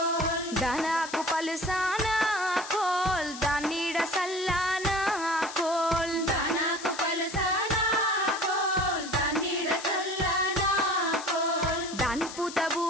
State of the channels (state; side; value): noise; left; hiss, 12 dB below the sound